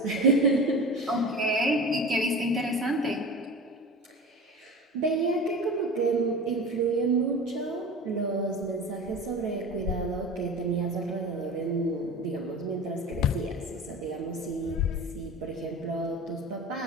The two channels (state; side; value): normal; both; correlation 0.32